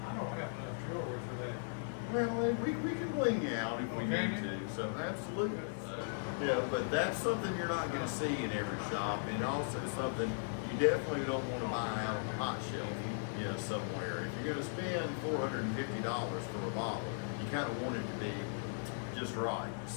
I don't have enough jewelry for that. Well, we can bling you out if we Okay. need to. So, absolutely. Yeah, but that's something you're not going to see in every shop. And also something you definitely don't want to buy out on the hot shelf, you know, somewhere. If you're going to spend $450 for a bottle, you kind of want it to be just right.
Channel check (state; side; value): silent; right; digital silence